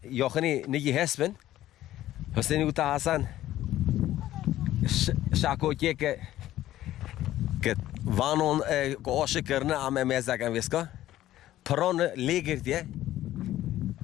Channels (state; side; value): quieter; right; 14.0 dB